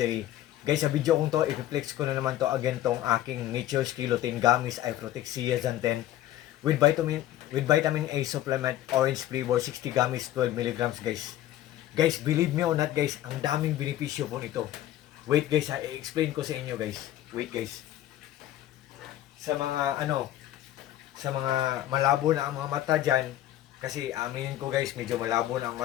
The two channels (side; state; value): right; quieter; 13.4 dB